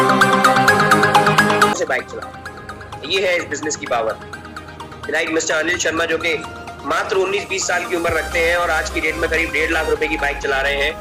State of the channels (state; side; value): identical; both; correlation 1.00